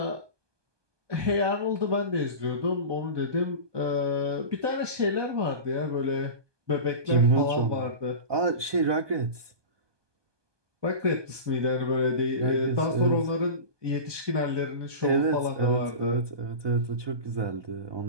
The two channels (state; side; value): late; left; 1.2 ms